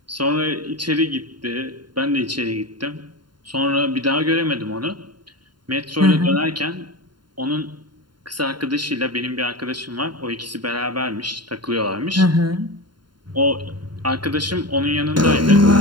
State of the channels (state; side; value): late; left; 0.71 ms